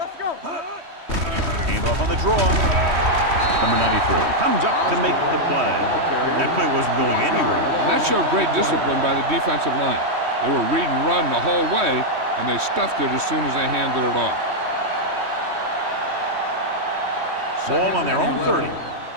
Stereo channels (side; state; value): left; late; 3.1 ms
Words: go. Hand off on the draw. Number 93 comes up to make the play. That play wasn't going anywhere. That showed great discipline by the defensive line. They were read and run the whole way, and they stuffed it as soon as they handed it off. Ball on their own 30.